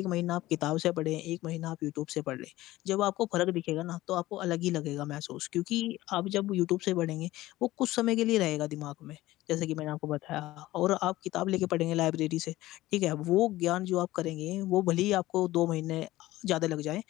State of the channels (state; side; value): quieter; right; 16.9 dB